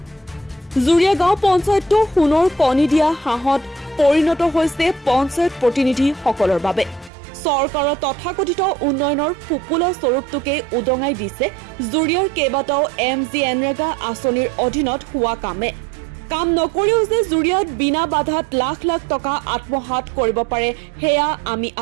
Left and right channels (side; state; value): left; drops out; at 7.1 s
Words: জুৰিয়া গাঁও পঞ্চায়তটো সোণৰ কণী দিয়া হাঁহত পৰিণত হৈছে পঞ্চায়ত প্ৰতিনিধিসকলৰ বাবে চৰকাৰৰ তথাকথিত উন্নয়নৰ ফুপুলা স্বৰূপটোকে উদঙাই দিছে জুৰিয়াৰ কেইবাটাও এনৰেগা আঁচনিৰ অধীনত হোৱা কামে কাম নকৰিও যে জুৰিয়াত বিনা বাধাত লাখ লাখ টকা আত্মসাত কৰিব পাৰে হেয়া আমি